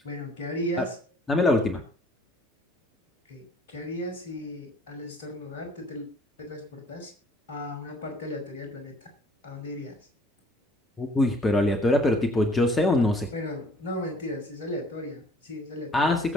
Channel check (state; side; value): normal; both; correlation 0.57